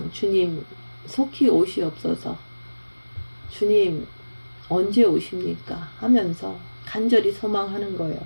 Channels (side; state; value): both; inverted; correlation -1.00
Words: 주님 속히 오시옵소서, 주님 언제 오십니까 하면서 간절히 소망하는 거예요.